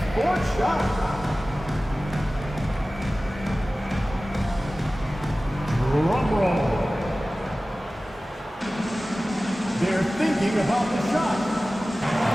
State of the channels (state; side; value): normal; both; correlation 0.97